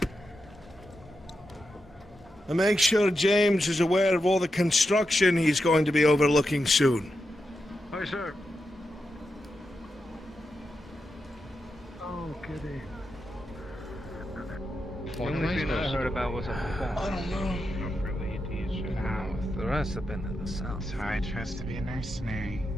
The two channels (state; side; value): normal; both; correlation 0.87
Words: And make sure James is aware of all the construction he's going to be overlooking soon. Aye, sir. Oh, goody. The only thing I heard about was a I don't know. The rest have been to the south. So I trust to be a mercenary.